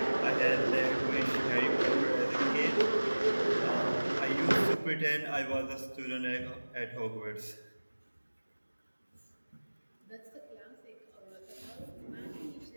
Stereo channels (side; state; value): both; inverted; correlation -1.00